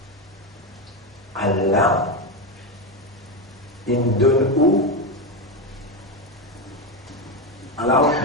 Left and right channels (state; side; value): normal; both; correlation 0.12